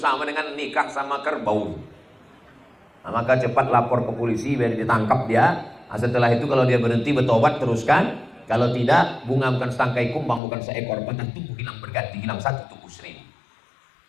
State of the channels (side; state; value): right; drops out; at 10.4 s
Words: dengan nikah sama kerbau. Nah, maka cepat lapor ke polisi biar ditangkap dia. Nah, setelah itu kalau dia berhenti bertobat teruskan. Kalau tidak, bunga bukan setangkai kumbang, bukan seekor batang tubuh hilang berganti, hilang 1 tubuh 1000.